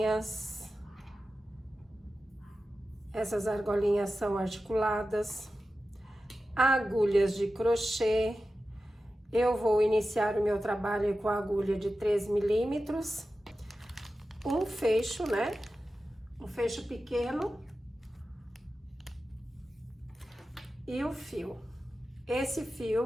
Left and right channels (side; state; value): both; normal; correlation 0.93